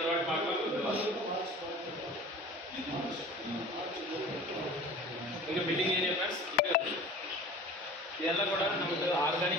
வாட்டி பார்க்கலாம். இங்க மீட்டிங் ஏரியா ஃப்ரெண்ட்ஸ். இதெல்லாம் கூட நமக்கு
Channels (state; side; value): normal; both; correlation 0.40